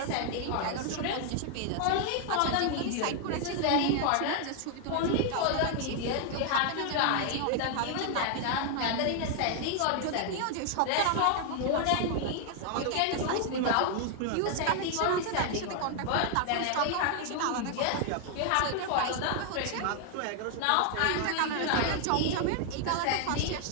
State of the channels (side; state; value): both; different; correlation 0.00